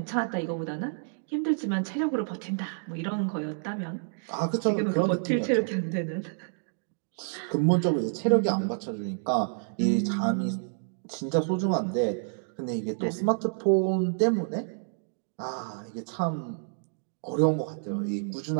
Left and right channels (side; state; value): left; silent; digital silence